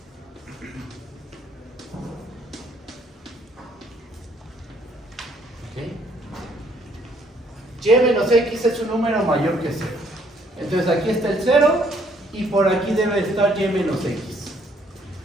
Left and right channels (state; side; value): normal; both; correlation 0.65